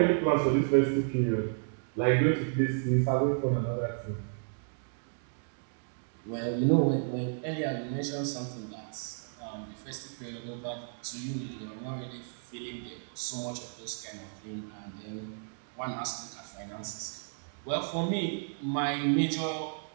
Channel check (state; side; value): silent; left; digital silence